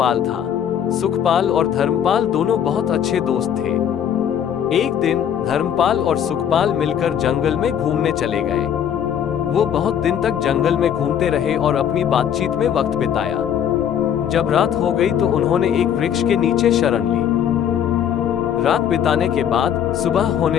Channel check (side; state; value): right; quieter; 9.2 dB